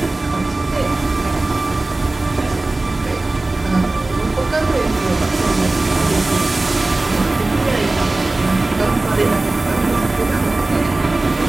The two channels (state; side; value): quieter; left; 3.0 dB